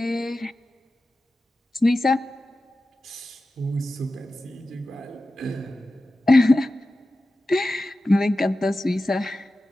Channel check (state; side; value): normal; both; correlation 0.93